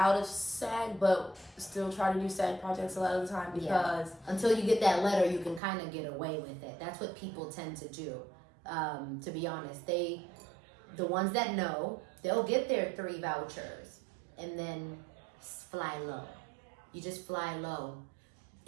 of SAG, but still try to do SAG projects a lot of the time because Until you get that letter, you can kind of get away with it. That's what people tend to do. To be honest, the ones that know, they'll get their 3 vouchers and then fly low. You just fly low.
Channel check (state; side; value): drops out; left; at 5.6 s